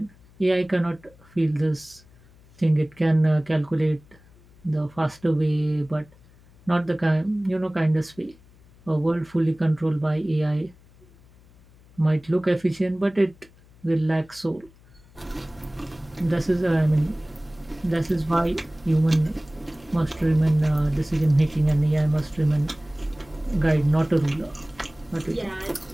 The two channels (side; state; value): left; noise; hum, 27 dB below the sound